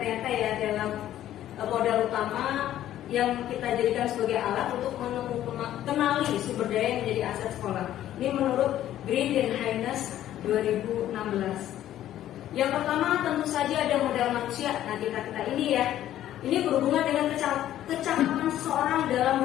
ya dalam modal utama yang kita jadikan sebagai alat untuk kenali sumber daya yang menjadi aset sekolah. Ini menurut Green dan Haynes 2016. Yang pertama tentu saja ada modal manusia. Nah kita ini ya, ini berhubungan dengan kecakapan seseorang dalam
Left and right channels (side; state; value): right; quieter; 12.4 dB